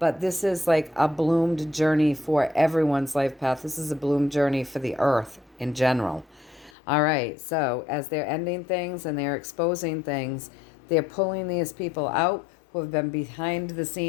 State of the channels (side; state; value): right; drops out; at 6.7 s